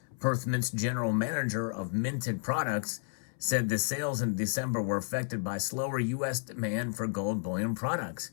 Perth Mint's general manager of minted products, said the sales in December were affected by slower U.S. demand for gold bullion products,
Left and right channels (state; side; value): silent; right; 57 dB below the other